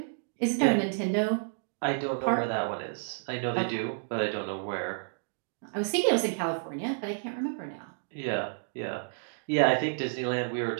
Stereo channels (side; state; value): left; silent; digital silence